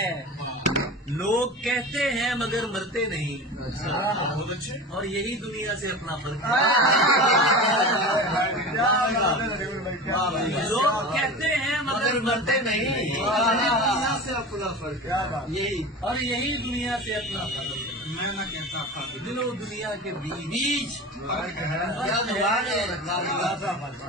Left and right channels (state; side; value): normal; both; correlation 0.31